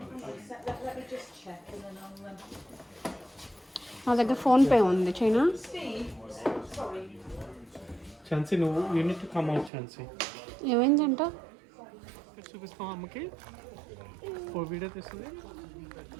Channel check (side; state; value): left; drops out; at 9.7 s